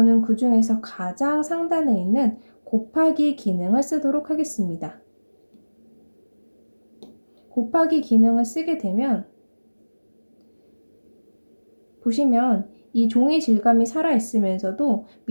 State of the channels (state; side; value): inverted; both; correlation -1.00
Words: 그 중에서 가장 상단에 있는 곱하기 기능을 쓰도록 하겠습니다. 곱하기 기능을 쓰게 되면 보시면 이 종이 질감이 살아있으면서도